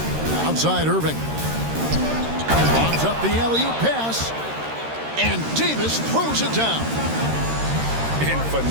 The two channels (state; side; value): late; left; 13 ms